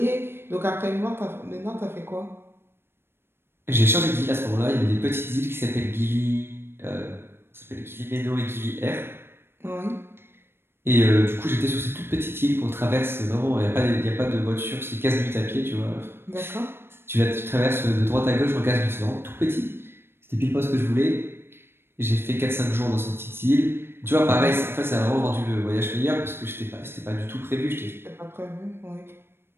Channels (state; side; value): late; left; 0.11 ms